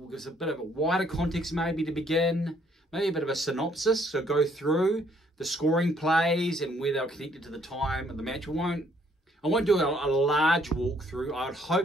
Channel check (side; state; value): both; normal; correlation 0.66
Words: a bit of a wider context maybe to begin, maybe a bit of a synopsis, so go through the scoring plays and where they were connected to the time of the match. I won't do a large walkthrough. I'll